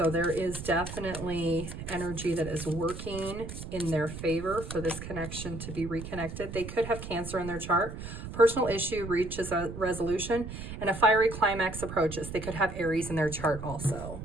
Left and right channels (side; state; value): right; noise; rumble, 9 dB below the sound